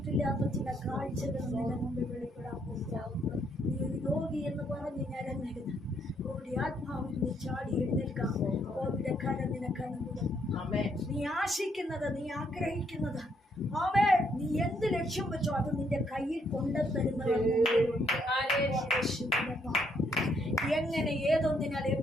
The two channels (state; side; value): normal; both; correlation 0.72